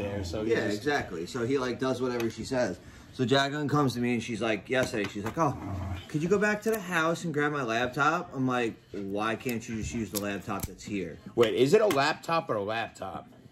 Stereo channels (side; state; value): both; identical; correlation 1.00